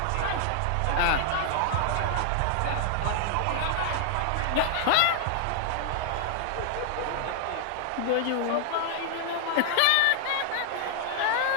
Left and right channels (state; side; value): different; both; correlation -0.01